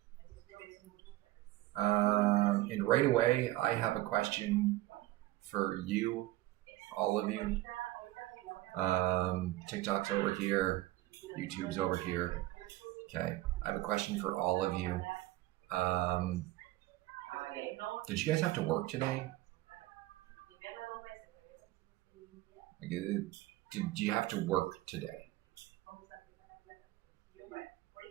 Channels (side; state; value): left; quieter; 17.3 dB